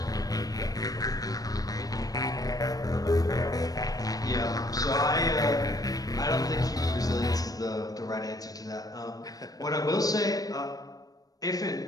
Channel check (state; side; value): late; right; 0.18 ms